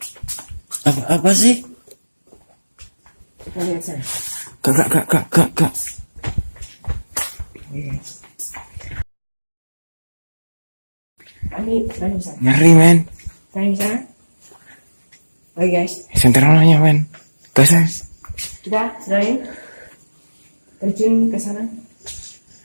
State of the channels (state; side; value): inverted; both; correlation -1.00